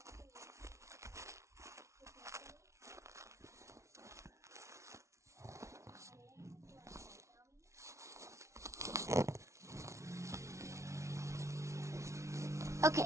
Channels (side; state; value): left; late; 0.14 ms